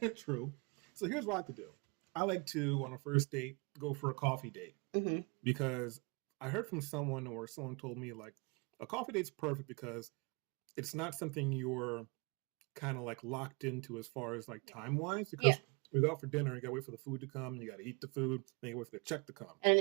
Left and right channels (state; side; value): quieter; left; 31.6 dB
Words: True. So here's what I like to do. I like to, on a first date, go for a coffee date. Mm-hmm. Because I heard from someone, or someone told me, like, a coffee date's perfect because it's not something you're kind of like locked into as far as like time-wise. Because we go out for dinner, you got to wait for the food to come, you got to eat the food, then you wait for the check to come. And